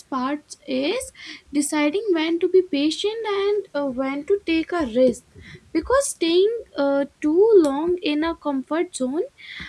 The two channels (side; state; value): both; identical; correlation 1.00